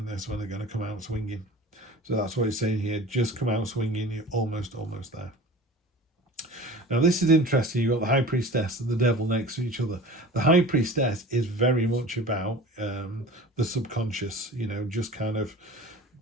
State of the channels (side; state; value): both; normal; correlation 0.39